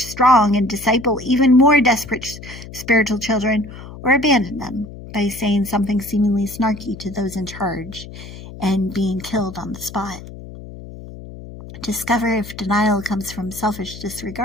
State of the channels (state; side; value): noise; left; hum, 14 dB below the sound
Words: strong and disciple even more desperate spiritual children, or abandon them by saying something seemingly snarky to those in charge and being killed on the spot. Discover if denial comes from selfish